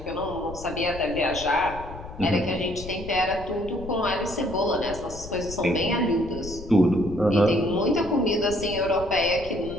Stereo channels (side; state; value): left; noise; rumble, 13 dB below the sound